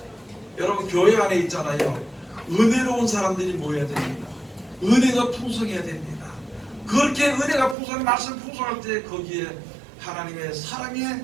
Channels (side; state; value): left; drops out; at 7.8 s